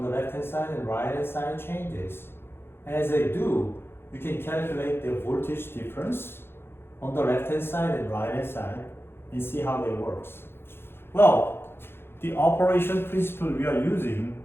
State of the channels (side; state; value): right; late; 0.11 ms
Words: the left hand side and right hand side changes. And as they do, you can calculate the voltage difference on the left hand side and right hand side and see how they works. Well, the operation principle we are using